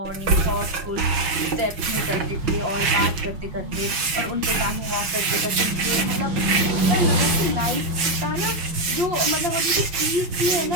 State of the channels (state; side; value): late; left; 6.1 ms